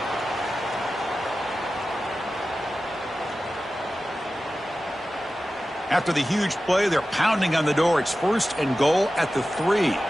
After the huge play, they're pounding on the door. It's 1st and goal at the 3. Let's go!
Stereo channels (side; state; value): both; normal; correlation 0.94